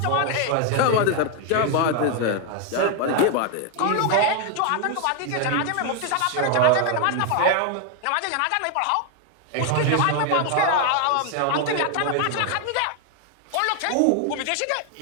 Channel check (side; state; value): both; different; correlation 0.01